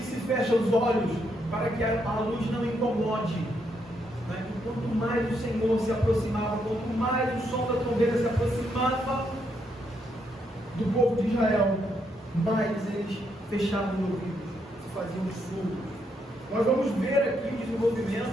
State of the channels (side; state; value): both; normal; correlation 0.77